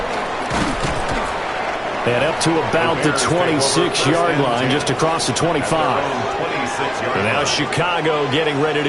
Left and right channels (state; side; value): identical; both; correlation 1.00